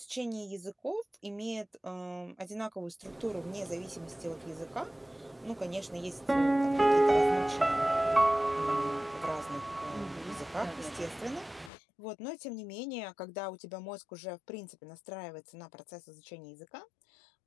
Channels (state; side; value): drops out; right; at 11.7 s